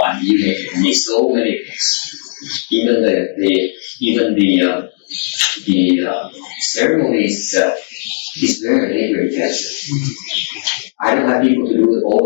I need so many things. Even the ceremonies itself is very labor intensive. I don't have people to do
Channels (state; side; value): silent; right; digital silence